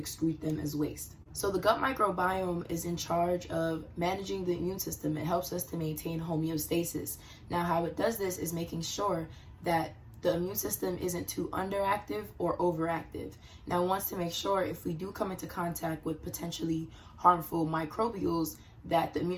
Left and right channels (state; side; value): identical; both; correlation 1.00